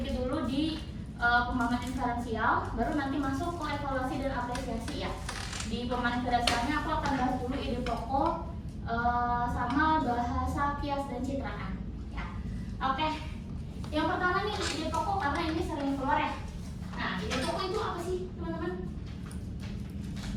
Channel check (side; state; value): both; identical; correlation 1.00